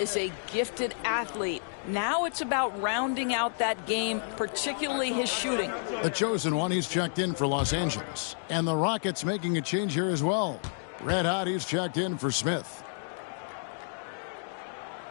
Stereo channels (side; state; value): right; silent; digital silence